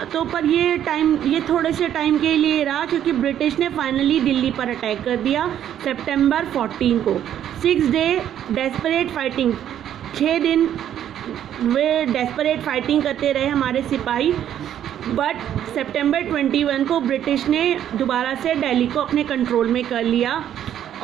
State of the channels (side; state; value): left; quieter; 10.5 dB